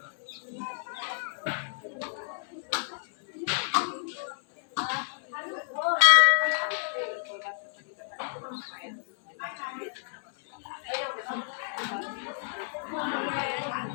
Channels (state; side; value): silent; right; 58 dB below the other